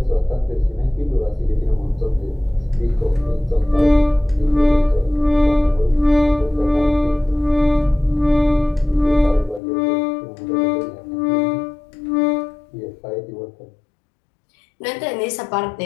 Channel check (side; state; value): right; drops out; at 9.6 s